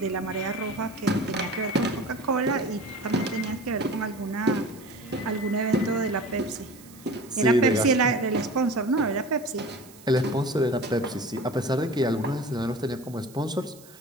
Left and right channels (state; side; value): noise; right; hiss, 22 dB below the sound